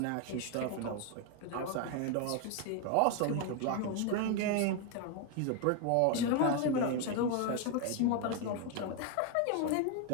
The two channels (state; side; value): different; both; correlation 0.01